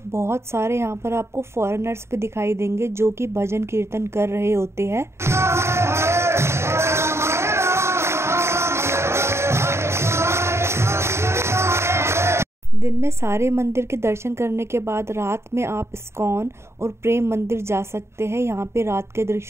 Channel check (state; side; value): late; left; 0.13 ms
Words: बहुत सारे यहाँ पर आपको फॉरेनर्स भी दिखाई देंगे जो कि भजन कीर्तन कर रहे होते हैं। दिन में सारे मंदिर के दर्शन करने के बाद रात में आप इस्कॉन और प्रेम मंदिर जा सकते हैं। यहाँ पे रात के